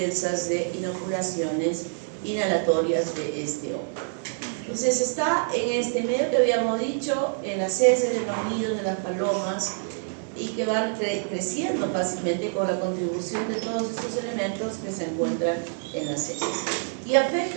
de inoculaciones inhalatorias de este hongo. Entonces, está en este medio que habíamos dicho, en las heces de los nidos de las palomas, y que van creciendo fácilmente con la contribución de todos estos elementos que se encuentran en las heces. Y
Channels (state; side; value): silent; left; digital silence